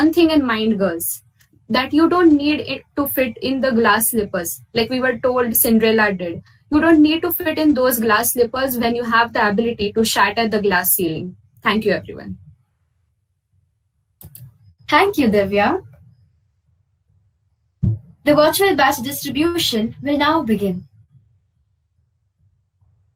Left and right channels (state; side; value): identical; both; correlation 1.00